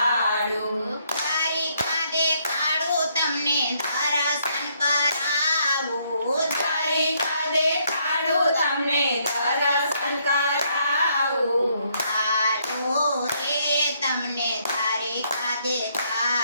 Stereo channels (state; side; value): inverted; both; correlation -0.71